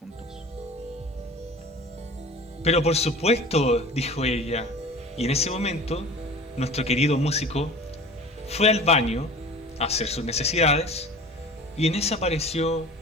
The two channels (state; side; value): normal; both; correlation 0.40